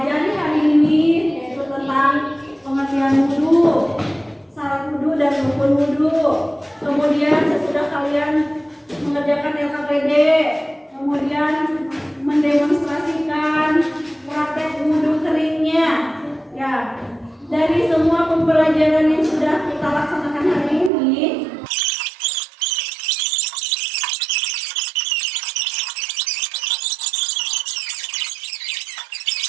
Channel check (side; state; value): left; drops out; at 20.9 s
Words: hari ini, yaitu tentang pengertian wudu, syarat wudu dan rukun wudu. Kemudian sesudah kalian mengerjakan LKPD, kemudian mendemonstrasikan praktek wudu keringnya. Ya, dari semua pembelajaran yang sudah kita laksanakan hari ini,